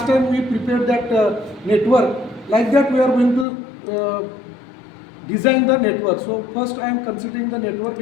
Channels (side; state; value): right; drops out; at 3.5 s